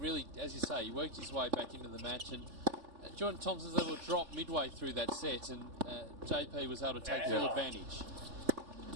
as you say, he worked his way back into the match, and Jordan Thompson's able to drop midway through that set, and JP was able to take full advantage.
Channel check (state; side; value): late; left; 3.4 ms